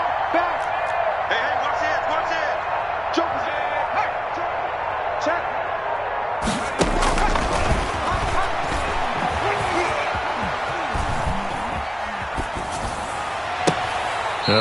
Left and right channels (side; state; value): both; identical; correlation 1.00